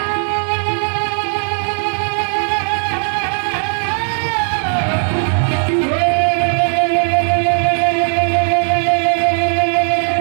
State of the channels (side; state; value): left; silent; 59 dB below the other